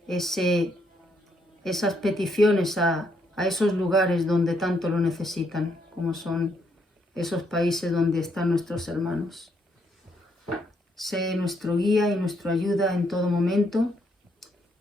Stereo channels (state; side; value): normal; both; correlation 0.74